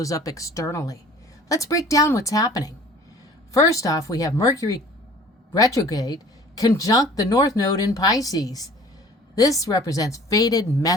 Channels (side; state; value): both; normal; correlation 0.49